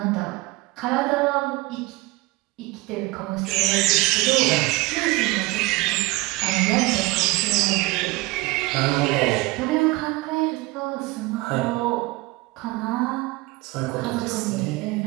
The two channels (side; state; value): left; quieter; 21.6 dB